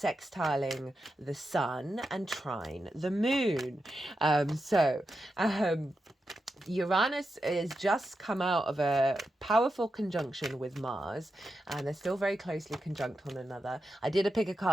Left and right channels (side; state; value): both; normal; correlation 0.88